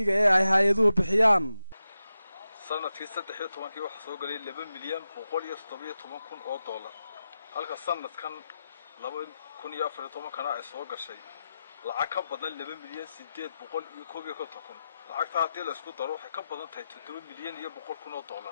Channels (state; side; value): inverted; both; correlation -0.91